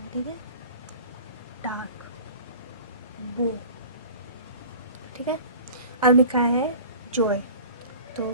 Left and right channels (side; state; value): both; inverted; correlation -0.42